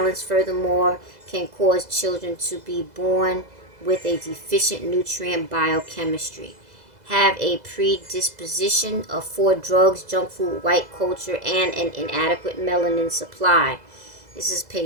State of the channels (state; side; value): late; left; 2.0 ms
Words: Furthermore, can cause children to be born with a deficient nutrient biochemistry, have a predisposition for drugs, junk food, white culture, and an inadequate melanin supply. This is